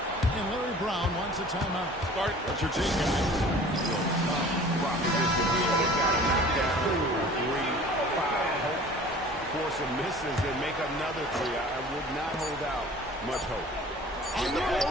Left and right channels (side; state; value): both; normal; correlation 0.45